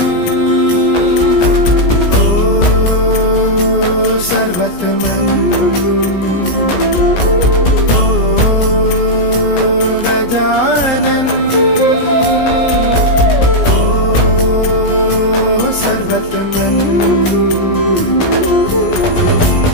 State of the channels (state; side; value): late; right; 17 ms